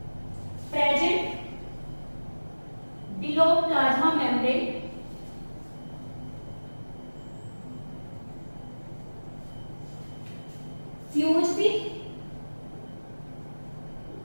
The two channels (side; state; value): both; inverted; correlation -1.00